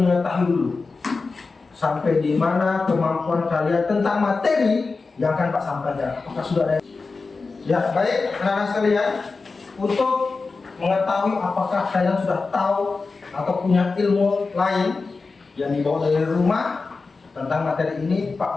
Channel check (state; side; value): quieter; right; 4.1 dB